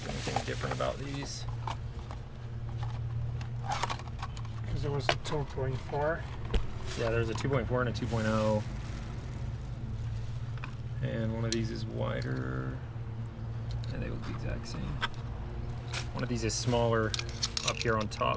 anything different about these. There was a 2.4. Yeah, there's a 2.4 and a 2.0. And one of these is wider. And they look the exact same. One of these is smaller up here on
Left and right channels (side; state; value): both; identical; correlation 1.00